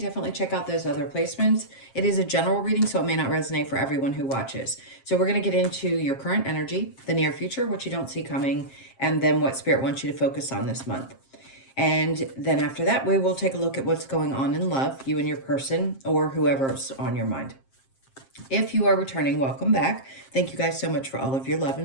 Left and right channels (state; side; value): late; right; 7.5 ms